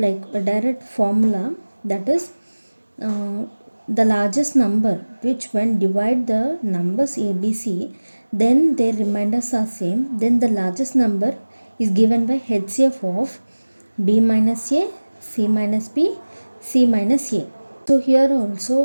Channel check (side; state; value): both; inverted; correlation -1.00